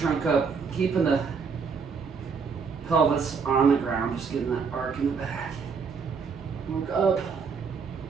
up, keeping the pelvis on the ground, just getting that arc in the back. Look up.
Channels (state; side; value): quieter; left; 5.6 dB